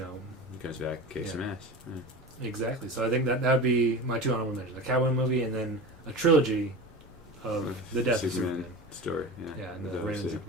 comes back, kicks some ass. Yeah. Exactly. So I think that would be my two honorable mentions. A Catwoman movie and then a trilogy of the Death of Superman. Story, yeah. Yeah, and the Reign of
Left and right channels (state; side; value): normal; both; correlation 0.30